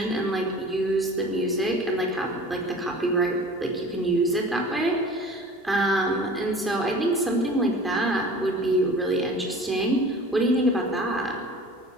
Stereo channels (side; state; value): both; normal; correlation 0.42